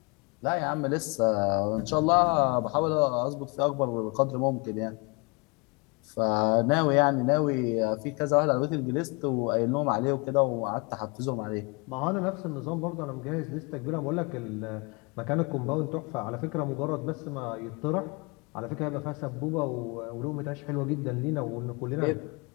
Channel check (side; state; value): right; quieter; 29.6 dB